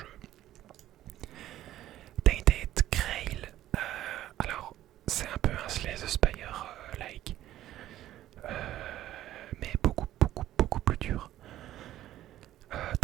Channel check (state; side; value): quieter; left; 13.5 dB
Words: Tainted Grail. Alors c'est un peu un Slay the Spire like, mais beaucoup plus dur.